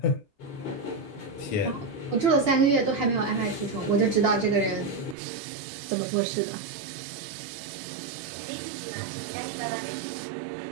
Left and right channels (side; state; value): left; drops out; at 5.2 s